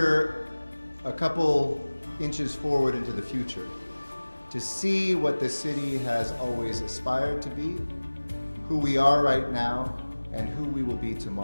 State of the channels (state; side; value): inverted; both; correlation -1.00